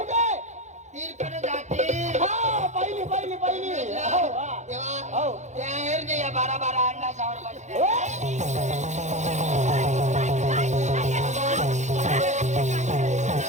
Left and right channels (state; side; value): late; left; 0.34 ms